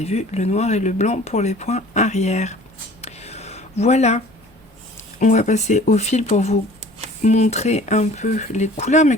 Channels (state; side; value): normal; both; correlation 0.48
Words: vu, le noir et le blanc pour les points arrière. Voilà, on va passer au fil pour vous montrer un peu les couleurs, mais